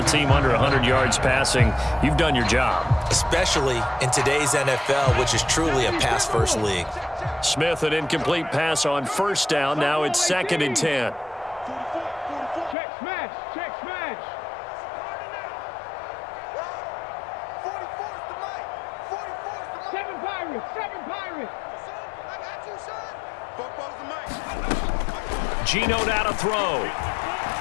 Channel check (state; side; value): drops out; right; at 12.8 s